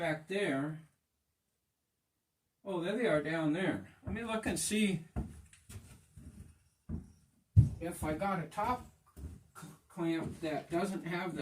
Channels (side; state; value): both; identical; correlation 1.00